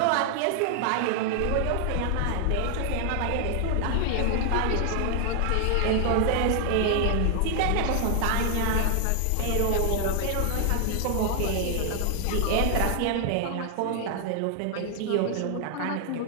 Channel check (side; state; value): both; different; correlation 0.00